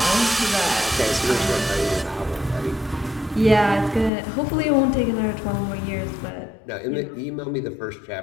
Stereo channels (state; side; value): drops out; right; at 4.1 s